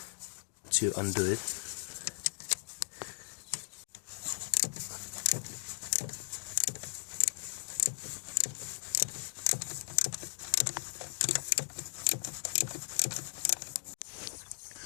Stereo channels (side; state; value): right; silent; digital silence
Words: to undo it.